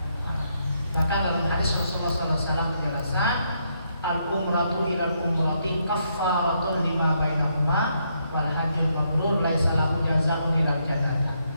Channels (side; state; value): both; inverted; correlation -0.76